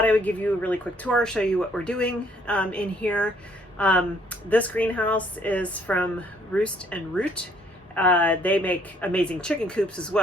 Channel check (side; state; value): both; normal; correlation 0.64